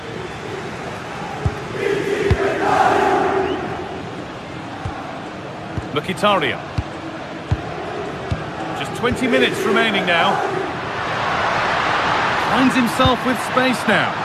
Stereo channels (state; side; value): identical; both; correlation 1.00